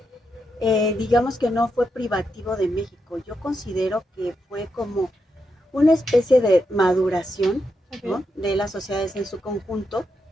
digamos que no fue privativo de México. Yo considero que fue como una especie de maduración, Okay. ¿no?, de las sociedades en su conjunto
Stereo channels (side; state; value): both; normal; correlation 0.84